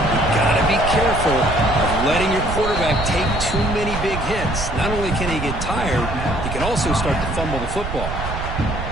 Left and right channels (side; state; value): right; noise; rumble, 6 dB below the sound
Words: You've got to be careful of letting your quarterback take too many big hits. Not only can he get tired, he can also start to fumble the football.